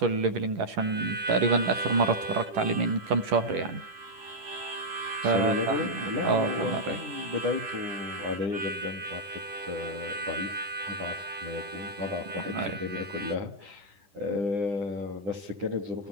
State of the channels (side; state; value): left; late; 10 ms